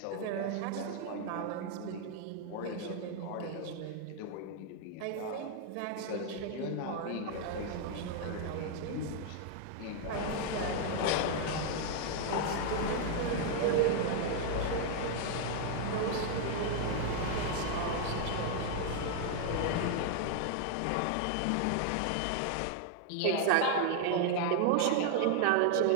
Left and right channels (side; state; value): both; different; correlation 0.00